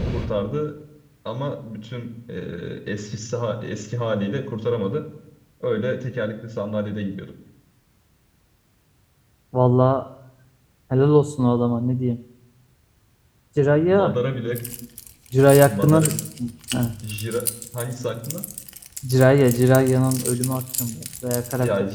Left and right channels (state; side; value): identical; both; correlation 1.00